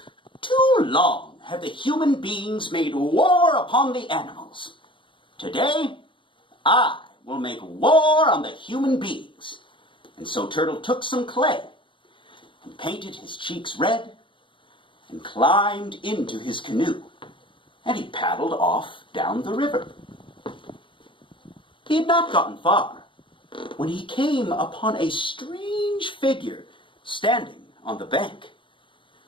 "Too long have the human beings made war upon the animals. Today, I will make war on the human beings." And so Turtle took some clay and painted his cheeks red and climbed into his canoe, and he paddled off down the river. He had not gotten far when he came upon a strange figure standing on the bank.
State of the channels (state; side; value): late; right; 0.24 ms